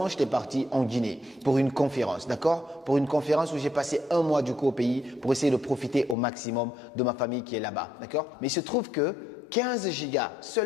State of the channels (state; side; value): drops out; right; at 6.2 s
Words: j'étais parti en Guinée pour une conférence, d'accord? Pour une conférence où j'ai passé un mois du coup au pays pour essayer de profiter au maximum de ma famille qui est là-bas, d'accord? Mais il se trouve que 15 gigas,